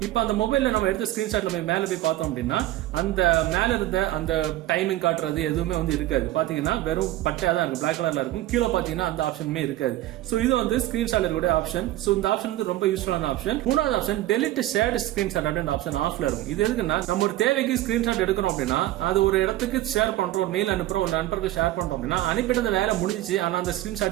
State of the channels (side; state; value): left; quieter; 15.3 dB